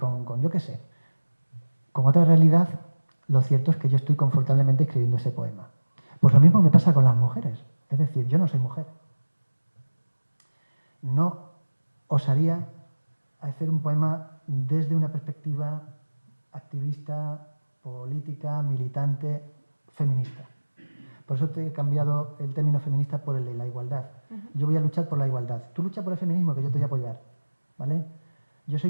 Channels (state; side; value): inverted; both; correlation -1.00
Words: yo qué sé, con otra realidad, lo cierto es que yo estoy confortablemente escribiendo ese poema. Pues lo mismo me pasa con las mujeres. Es decir, yo no soy mujer. No osaría hacer un poema desde una perspectiva activista, política, militante, feminista. Por eso te he cambiado el término feminista por el de la igualdad. Yo voy a luchar por la igualdad. Tú lucha por el feminismo, que yo te voy a apoyar. ¿Vale? Yo soy